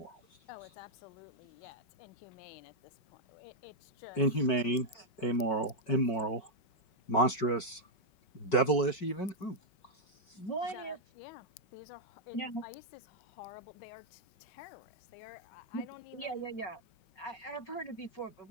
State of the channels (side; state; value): right; late; 5.4 ms